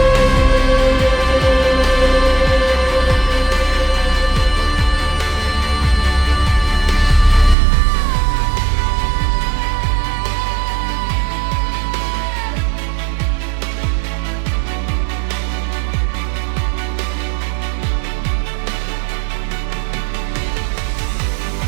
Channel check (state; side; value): drops out; left; at 7.6 s